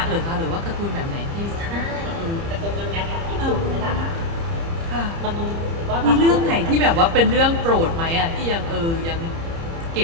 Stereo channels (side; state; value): left; late; 30 ms